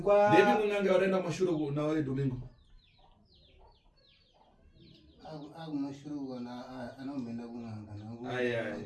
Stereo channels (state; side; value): identical; both; correlation 1.00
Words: kwa ndepi munanga waenda mashuro na wale Domingo mashuro kana anombenda kunanga nangu ai